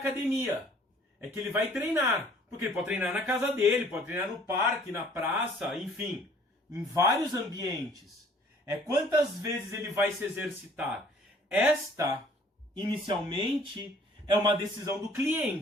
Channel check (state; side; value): normal; both; correlation 0.56